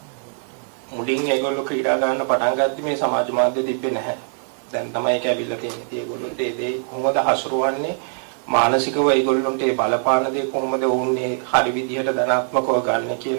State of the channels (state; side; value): silent; left; digital silence